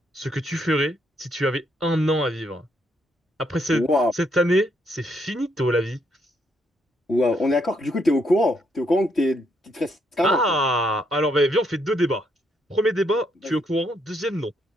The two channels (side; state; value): both; normal; correlation 0.74